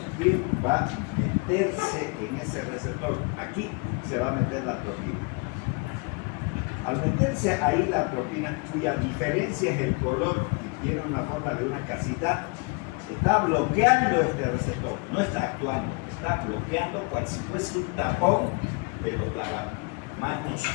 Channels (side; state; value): right; quieter; 31.6 dB